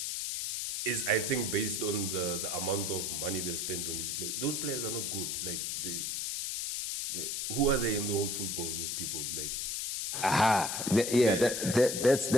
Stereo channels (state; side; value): noise; left; hiss, 1 dB below the sound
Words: is, I think, based on the amount of money they've spent on these players. Those players are not good. Like who are they in the whole football? Those people, like.